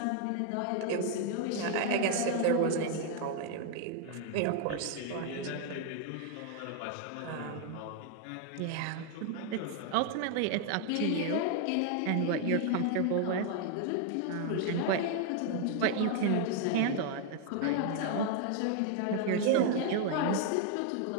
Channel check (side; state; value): both; different; correlation 0.00